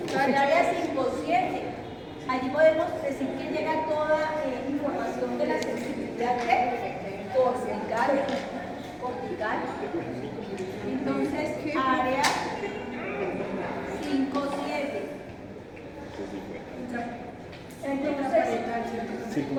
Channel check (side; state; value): both; identical; correlation 1.00